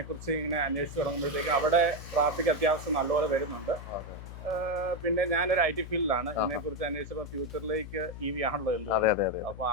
ഇങ്ങനെ അന്വേഷിച്ച് തുടങ്ങുമ്പോഴത്തേക്കും അവിടെ ട്രാഫിക് അത്യാവശ്യം നല്ലപോലെ വരുന്നുണ്ട്. പിന്നെ ഞാനൊരു IT ഫീൽഡിലാണ്. ഇതിനെക്കുറിച്ച് അന്വേഷിച്ചപ്പോൾ ഫ്യൂച്ചറിലേക്ക് EV ആണല്ലോ എന്ത്. അപ്പോൾ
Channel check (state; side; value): noise; left; hum, 11 dB below the sound